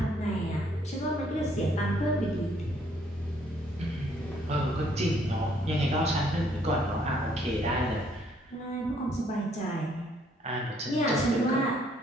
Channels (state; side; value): normal; both; correlation 0.66